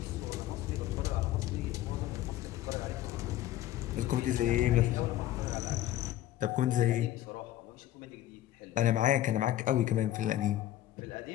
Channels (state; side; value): quieter; right; 13.5 dB